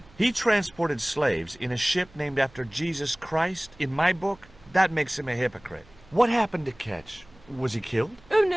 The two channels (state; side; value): noise; right; hum, 26 dB below the sound